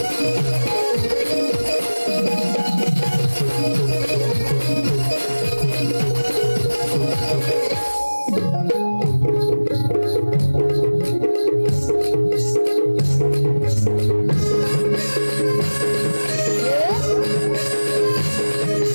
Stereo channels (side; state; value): both; inverted; correlation -1.00